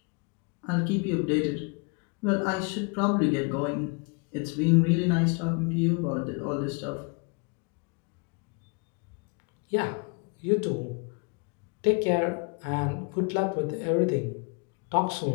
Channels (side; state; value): right; quieter; 33.0 dB